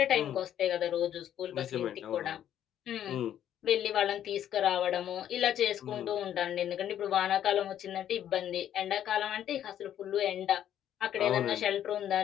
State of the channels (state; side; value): quieter; right; 10.6 dB